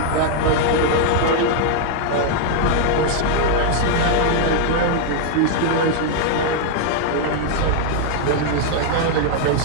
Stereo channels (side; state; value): both; different; correlation -0.01